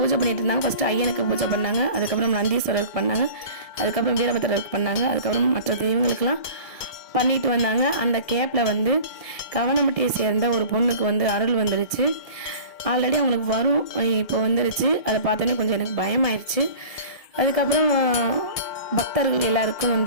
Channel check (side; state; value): right; late; 1.6 ms